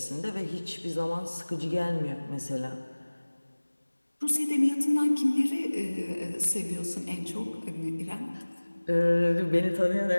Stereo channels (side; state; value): both; inverted; correlation -1.00